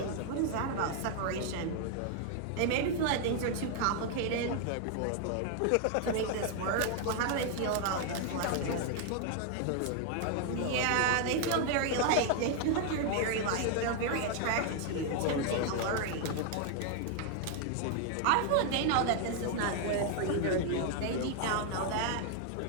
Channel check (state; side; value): different; both; correlation 0.00